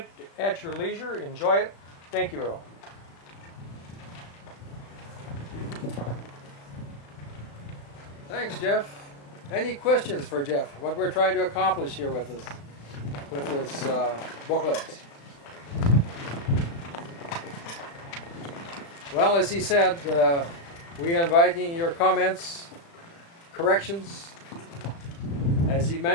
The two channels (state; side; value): late; right; 35 ms